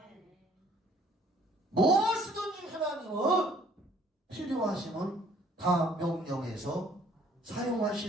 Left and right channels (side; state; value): both; normal; correlation 0.58